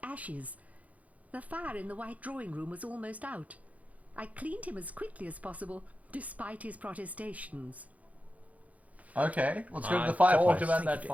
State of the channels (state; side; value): late; left; 0.070 ms